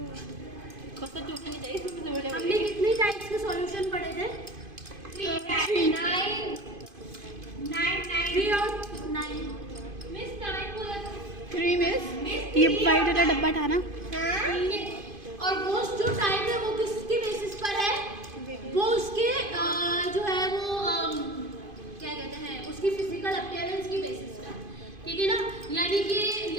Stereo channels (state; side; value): late; left; 2.5 ms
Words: हमने कितने टाइप्स के सॉल्यूशन पढ़े थे? 3 और 9। मिस 9 बोला था। 3 मिस ये वाइट वाला डब्बा था ना। और वो जो टाइप है वो किसके बेसिस पर है? वो उसके जो है वो क्या कहते हैं, उसकी फिजिकल अपीयरेंस की बेसिस पर। ठीक है ना, यानी कि